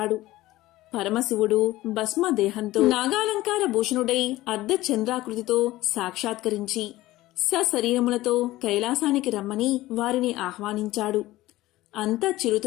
పరమశివుడు భస్మదేహంతో నాగాలంకార భూషణుడై అర్ధచంద్రాకృతితో సాక్షాత్కరించి సశరీరములతో కైలాసానికి రమ్మని వారిని ఆహ్వానించాడు. అంతా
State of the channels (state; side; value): quieter; right; 17.1 dB